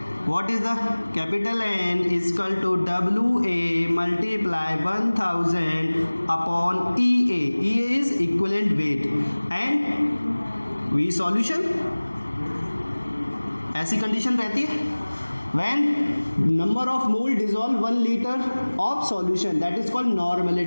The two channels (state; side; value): inverted; both; correlation -1.00